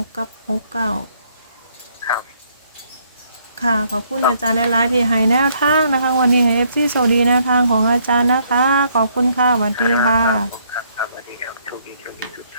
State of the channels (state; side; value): inverted; both; correlation -0.69